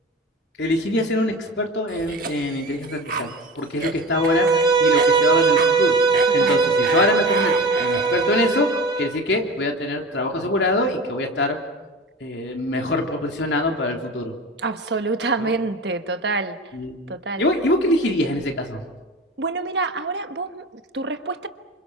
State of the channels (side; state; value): both; normal; correlation 0.32